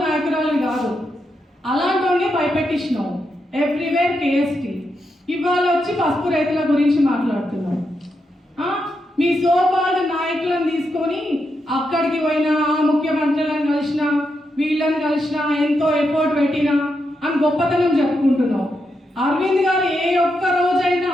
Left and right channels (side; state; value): both; normal; correlation 0.84